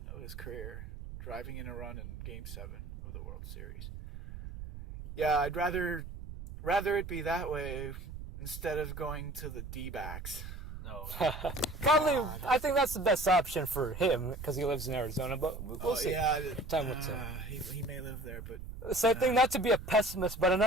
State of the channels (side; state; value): right; noise; rumble, 10 dB below the sound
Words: of his career, driving in a run in Game 7 of the World Series. Yeah, I'd rather it be that way instead of going to the D-backs. No. Probably, I think that's the best option for him because he lives in Arizona, but we'll see. Yeah, time will tell. He may live there, but... So I think not to be a pessimist, but